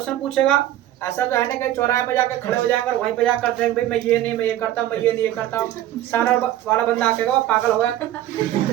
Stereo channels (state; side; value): quieter; left; 13.1 dB